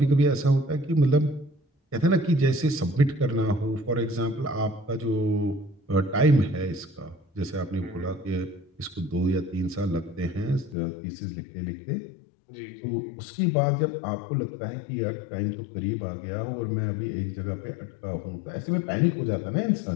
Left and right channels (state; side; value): drops out; right; at 10.8 s